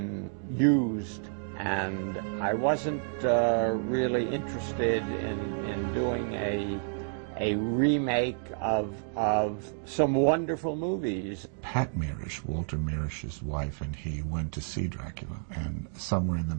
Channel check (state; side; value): silent; left; digital silence